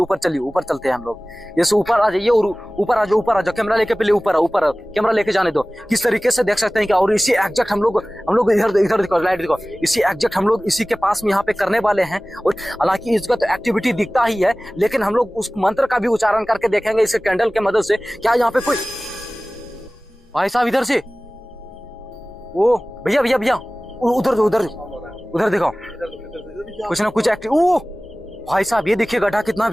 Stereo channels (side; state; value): both; normal; correlation 0.98